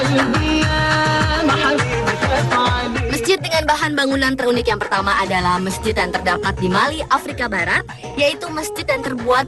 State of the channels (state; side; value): identical; both; correlation 1.00